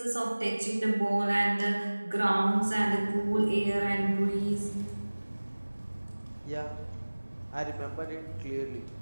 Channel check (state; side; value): inverted; both; correlation -1.00